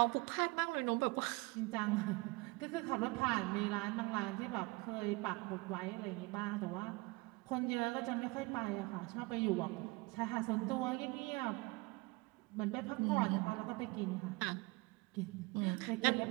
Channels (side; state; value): left; quieter; 25.0 dB